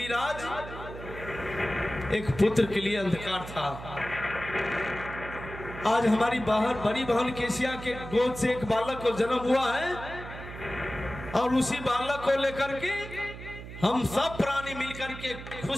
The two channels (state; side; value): noise; right; hum, 12 dB below the sound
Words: राज एक पुत्र के लिए अंधकार था। आज हमारी बाहर बड़ी बहन केसिया के गोद से एक बालक को जन्म हुआ है और उसी बालक को लेकर के हम सब प्राणी मिलकर के